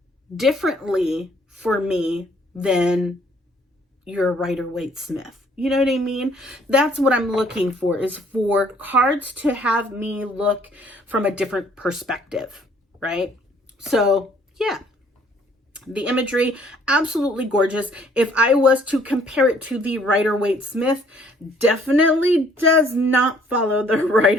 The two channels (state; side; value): normal; both; correlation 0.61